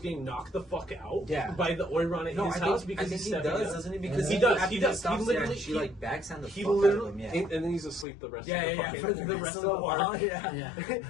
getting knocked the fuck out by the Oiran at his house because he's stepping up. Doesn't he? Because he does. He literally, she like backs on the he fuck literally, out of him. and then he's asleep the rest of the rest of the while. Yeah.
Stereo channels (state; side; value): drops out; right; at 8.1 s